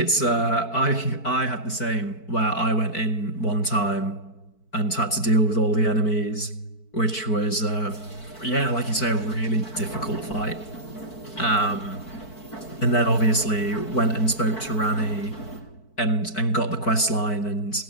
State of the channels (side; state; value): right; late; 4.5 ms